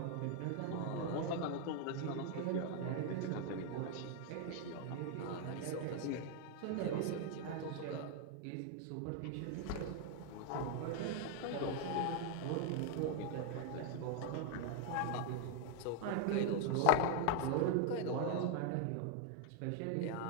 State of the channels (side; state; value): both; different; correlation 0.00